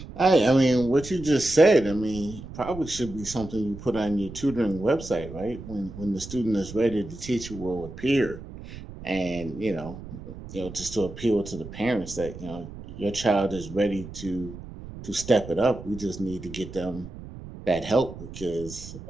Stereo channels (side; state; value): right; noise; rumble, 13 dB below the sound